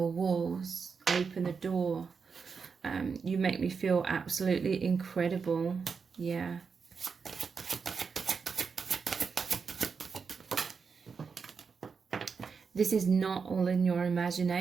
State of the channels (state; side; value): quieter; left; 5.5 dB